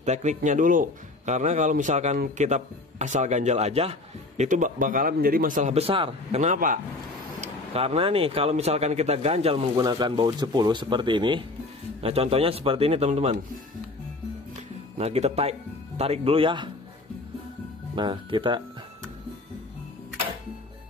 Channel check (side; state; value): right; quieter; 3.1 dB